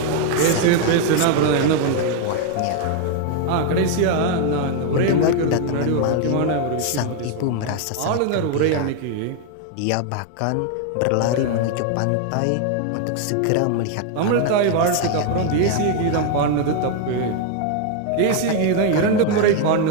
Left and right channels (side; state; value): both; different; correlation 0.00